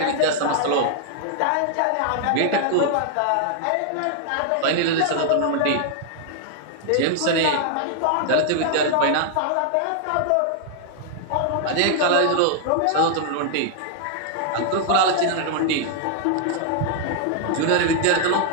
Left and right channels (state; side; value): different; both; correlation -0.01